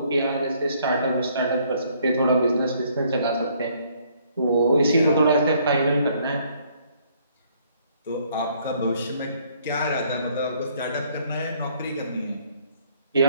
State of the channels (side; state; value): both; inverted; correlation -0.65